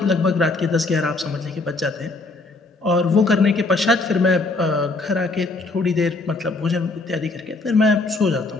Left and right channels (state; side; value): quieter; right; 3.4 dB